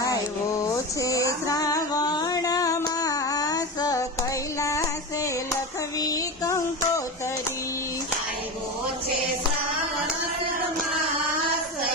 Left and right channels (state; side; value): normal; both; correlation 0.23